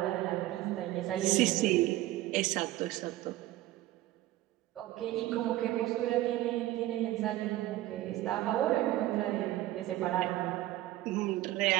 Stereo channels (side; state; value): left; quieter; 15.7 dB